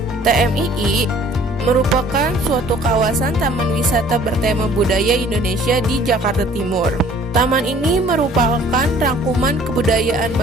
TMII merupakan suatu kawasan taman wisata bertema budaya Indonesia di Jakarta Timur. Taman ini merupakan rangkuman kebudayaan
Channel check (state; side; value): normal; both; correlation 0.54